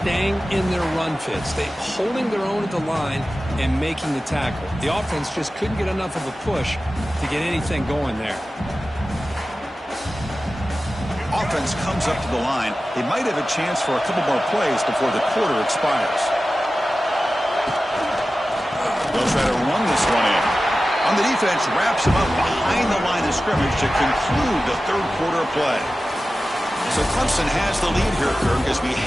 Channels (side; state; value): both; normal; correlation 0.95